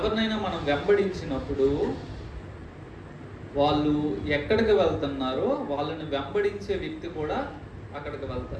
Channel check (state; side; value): identical; both; correlation 1.00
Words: మనం వెంబడించినప్పుడు వాళ్ళు ఎక్కడికి వెళ్తున్నారో వాళ్ళని వెంబడించే వ్యక్తి కూడా అక్కడికి